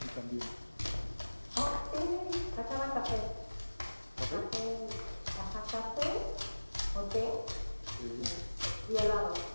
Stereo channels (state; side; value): inverted; both; correlation -1.00